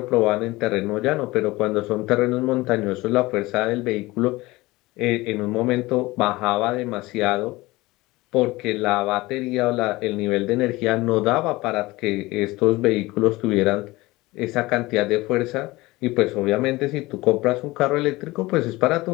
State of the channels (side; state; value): right; quieter; 20.3 dB